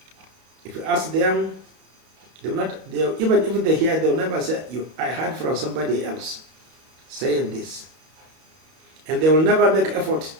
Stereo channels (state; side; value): late; left; 32 ms